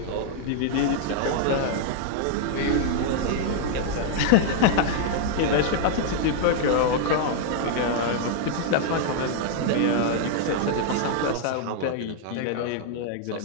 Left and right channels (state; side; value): different; both; correlation 0.00